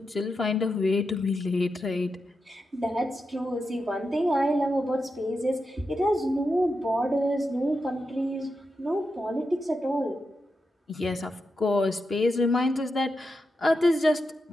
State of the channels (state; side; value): normal; both; correlation 0.87